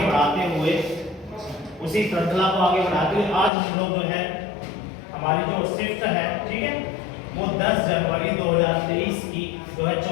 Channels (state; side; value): drops out; right; at 3.5 s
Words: हुए आज हम लोग जो है हमारी जो शिफ्ट है, ठीक है, वो 10 जनवरी 2023 की जो है